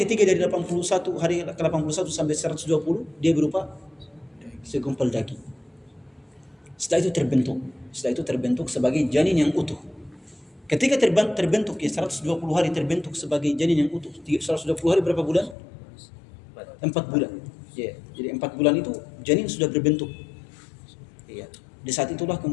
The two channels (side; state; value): right; drops out; at 15.6 s